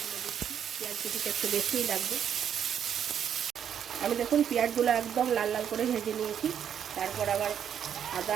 পেঁয়াজ কুচিটা একটু বেশিই লাগবে। আমি দেখুন পেঁয়াজগুলো একদম লাল লাল করে ভেজে নিয়েছি। তারপর আবার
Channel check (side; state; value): left; quieter; 8.8 dB